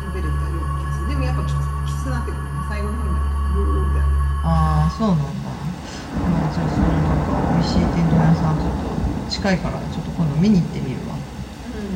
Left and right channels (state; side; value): identical; both; correlation 1.00